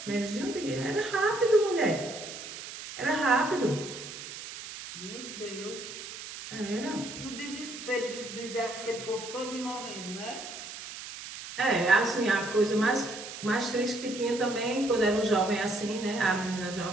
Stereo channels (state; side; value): noise; right; hiss, 11 dB below the sound